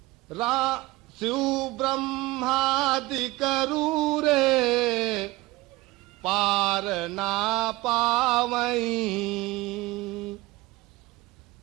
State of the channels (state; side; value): quieter; left; 19.7 dB